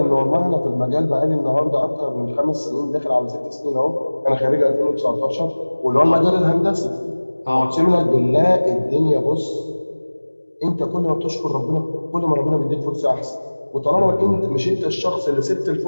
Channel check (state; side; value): inverted; both; correlation -1.00